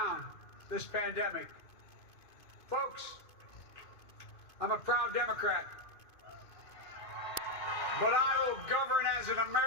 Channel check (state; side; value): late; right; 2.5 ms